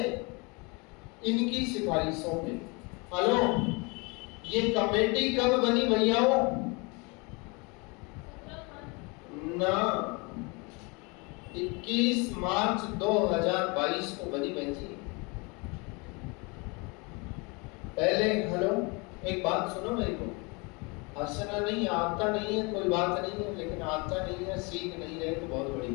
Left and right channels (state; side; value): quieter; right; 29.2 dB